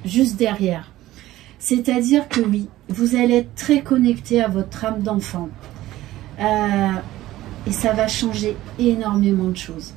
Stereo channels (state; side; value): quieter; left; 15.6 dB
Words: juste derrière. C'est-à-dire que oui, vous allez être très connecté à votre âme d'enfant. Et ça va changer énormément de choses.